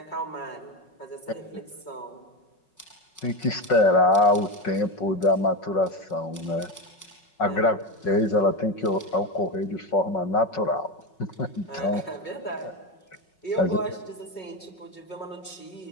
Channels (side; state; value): right; late; 5.4 ms